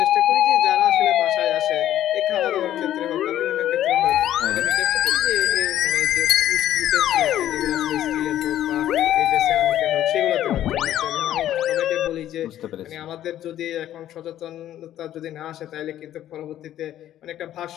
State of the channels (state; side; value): quieter; right; 12.2 dB